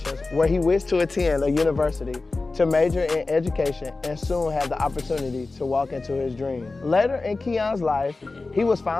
where he wished to attend a university to major in education and soon have the opportunity to walk into his dream. Later in Keon's life, he was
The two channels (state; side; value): quieter; right; 3.5 dB